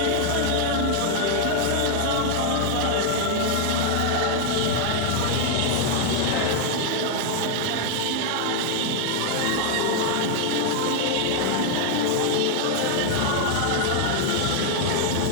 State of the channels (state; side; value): different; both; correlation 0.00